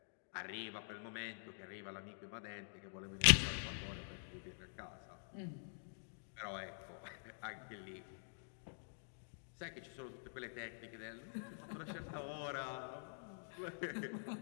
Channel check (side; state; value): right; silent; digital silence